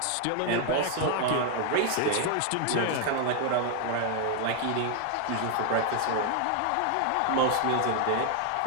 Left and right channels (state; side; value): different; both; correlation 0.00